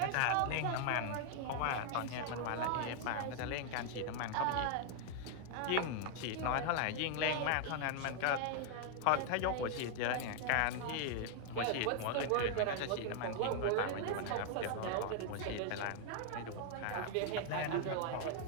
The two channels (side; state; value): both; different; correlation 0.00